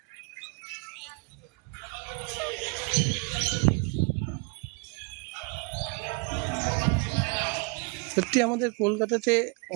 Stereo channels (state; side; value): quieter; left; 32.4 dB